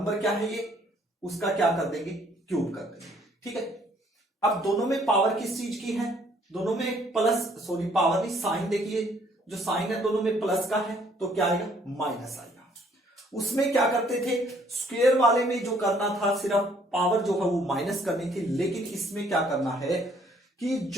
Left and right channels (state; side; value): normal; both; correlation 0.63